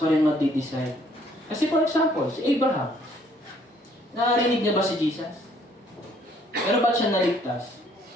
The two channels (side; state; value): both; normal; correlation 0.63